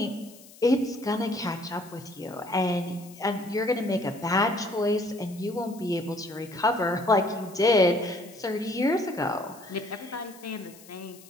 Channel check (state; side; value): noise; left; hiss, 21 dB below the sound